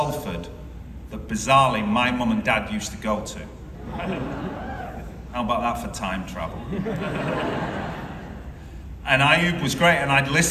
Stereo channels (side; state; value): both; identical; correlation 1.00